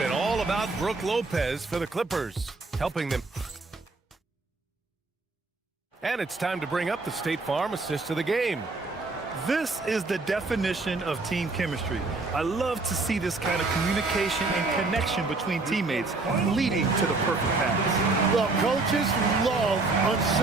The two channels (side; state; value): left; quieter; 3.6 dB